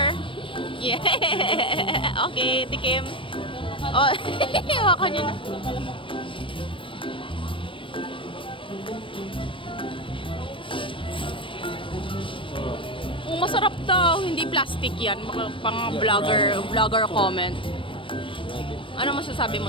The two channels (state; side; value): late; right; 0.25 ms